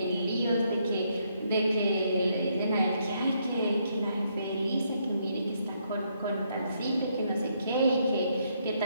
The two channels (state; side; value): inverted; both; correlation -0.74